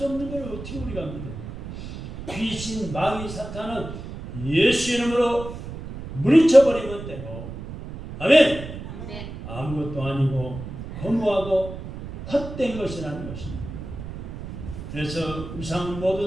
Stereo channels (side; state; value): right; noise; rumble, 10 dB below the sound